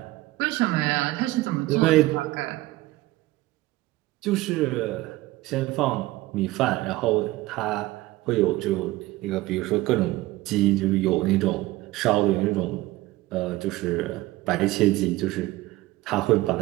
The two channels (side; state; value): left; quieter; 18.4 dB